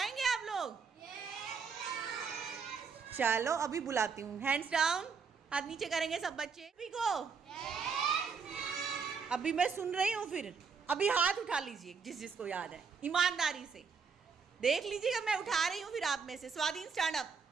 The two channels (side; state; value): left; quieter; 5.6 dB